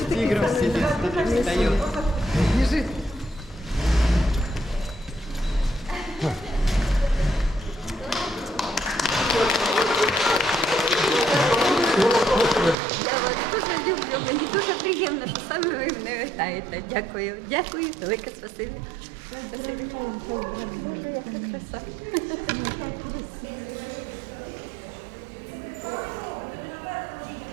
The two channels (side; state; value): left; drops out; at 12.8 s